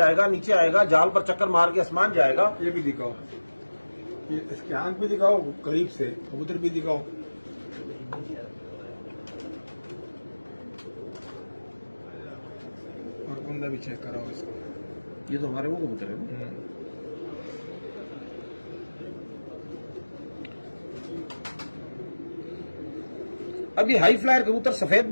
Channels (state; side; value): inverted; both; correlation -1.00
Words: नीचे आएगा, जाल पर चक्कर मार के आसमान जाएगा। ये भी दिखाओ, इसकी आंख भी दिखाओ, करीब से कबूतर भी दिखाओ। बंदा भी चेक कराओ इसको। ये तो हमारे वो कबूतर है ना। अब ये हाई फ्लायर कबूतर सफेद